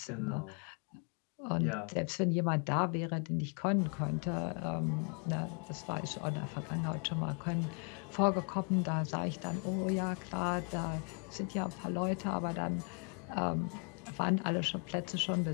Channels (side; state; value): right; quieter; 39.8 dB